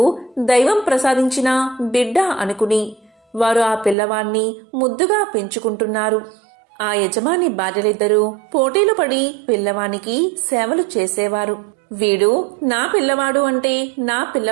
దైవం ప్రసాదించిన బిడ్డ అనుకుని వారు ఆ పిల్లవాణ్ణి ముద్దుగా పెంచుకుంటున్నారు. ఆ యజమాని భార్యలిద్దరూ పోటీలు పడి పిల్లవానికి సేవలు చేసేవారు. వీడు నా పిల్లవాడు అంటే నా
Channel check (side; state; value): left; drops out; at 4.0 s